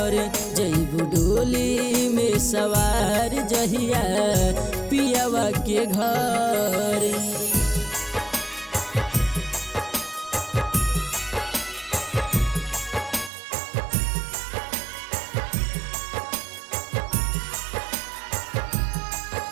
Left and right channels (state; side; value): drops out; left; at 13.3 s